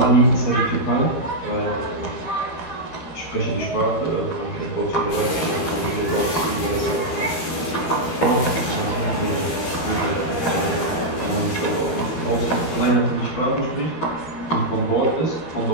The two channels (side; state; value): right; late; 13 ms